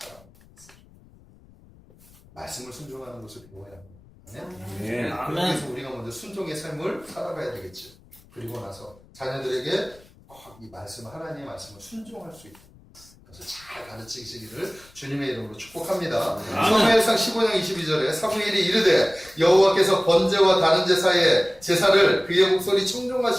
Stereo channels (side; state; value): left; noise; rumble, 26 dB below the sound